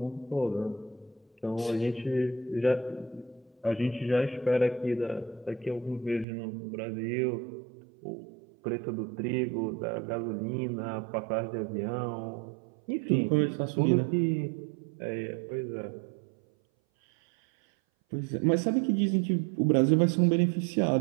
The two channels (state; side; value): drops out; left; at 6.2 s